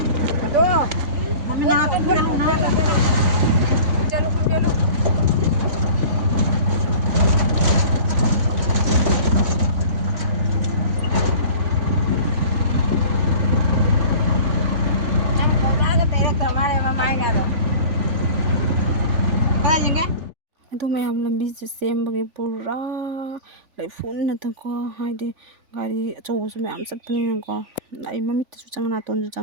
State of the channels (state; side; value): late; left; 3.5 ms